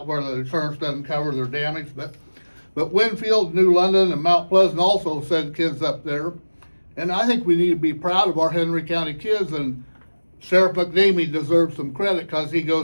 where the insurance doesn't cover their damage. But Winfield, New London, and Mount Pleasant also send kids up there. And I think we need to be proud of our Henry County kids, and Sheriff McNamee deserves some credit because he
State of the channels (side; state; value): both; inverted; correlation -1.00